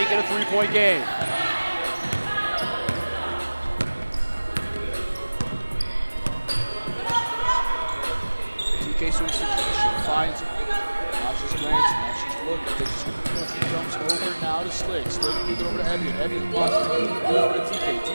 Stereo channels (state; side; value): inverted; both; correlation -1.00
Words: it a 3-point game. TK swings to Keisha, finds it. Now she's glancing, now she's looking. She jumps over now to Slick. Slick gives it over to Evian. Evian pauses, gives it over to TK.